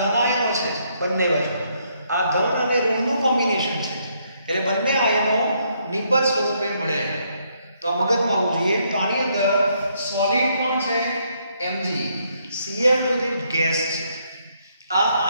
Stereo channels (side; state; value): both; inverted; correlation -0.73